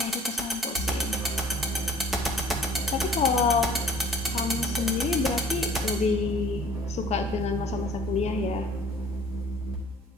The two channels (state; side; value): normal; both; correlation 0.53